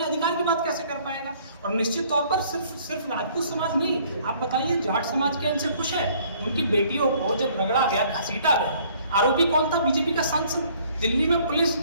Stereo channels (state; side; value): inverted; both; correlation -0.59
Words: अधिकार की बात कैसे कर पाएगा। और निश्चित तौर पर सिर्फ राजपूत समाज नहीं, आप बताइए जाट समाज के इनसे खुश है। उनकी बेटियों को जब रगड़ा गया, घसीटा गया, आरोपी कौन था? बीजेपी का सांसद। दिल्ली में पुलिस